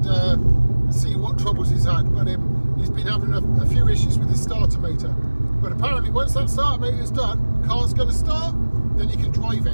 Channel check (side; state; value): both; inverted; correlation -1.00